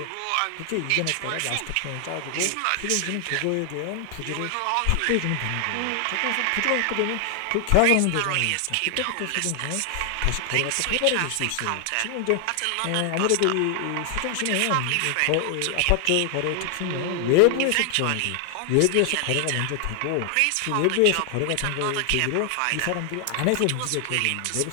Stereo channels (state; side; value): different; both; correlation 0.00